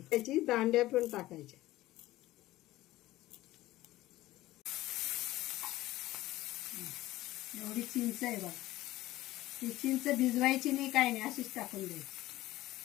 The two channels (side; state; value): right; quieter; 16.6 dB